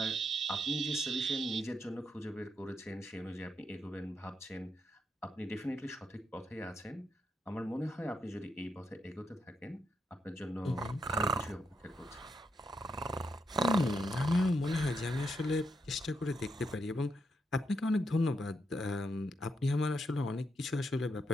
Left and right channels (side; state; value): both; normal; correlation 0.81